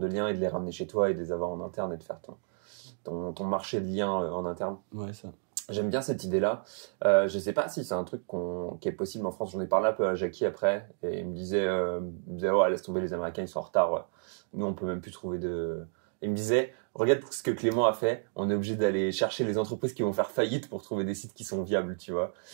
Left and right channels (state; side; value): silent; left; digital silence